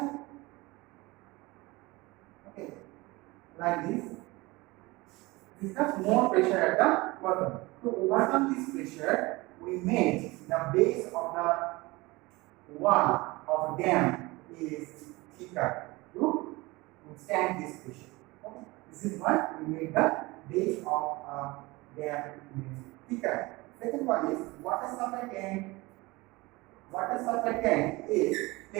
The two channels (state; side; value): quieter; left; 22.4 dB